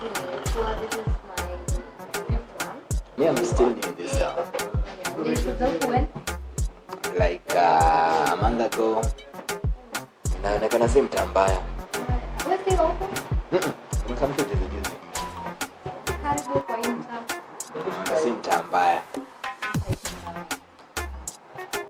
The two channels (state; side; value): identical; both; correlation 1.00